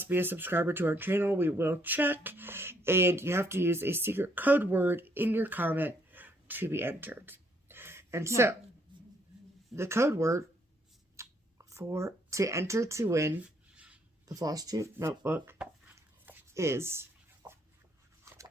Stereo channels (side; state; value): both; normal; correlation 0.69